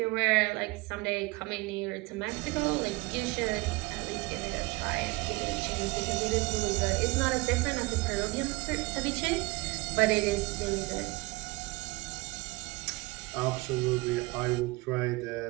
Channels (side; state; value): left; quieter; 23.3 dB